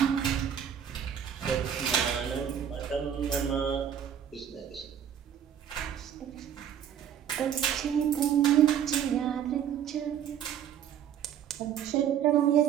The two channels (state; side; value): quieter; left; 9.1 dB